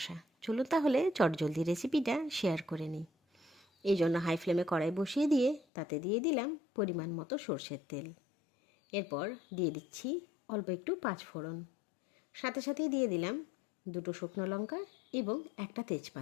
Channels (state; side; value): drops out; right; at 5.6 s